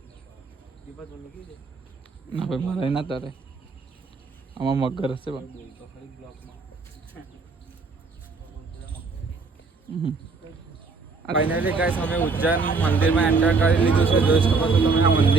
ના ભાઈ મારે ના તારે આમાં મગર હશે. ફાઇનલી ગાઈસ અમે ઉજ્જૈન મંદિરમાં એન્ટર કરી લીધું છે. જોઈ શકો છો તમે આ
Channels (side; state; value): left; quieter; 4.4 dB